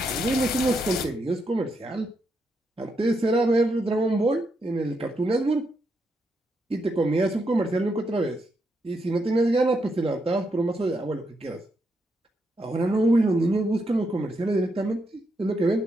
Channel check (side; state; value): both; normal; correlation 0.81